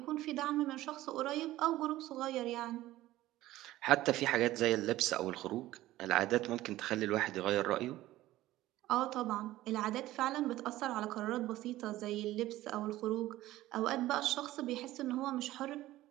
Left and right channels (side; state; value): left; quieter; 15.9 dB